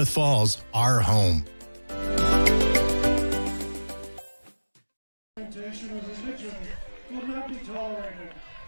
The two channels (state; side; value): inverted; both; correlation -1.00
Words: Falls our home.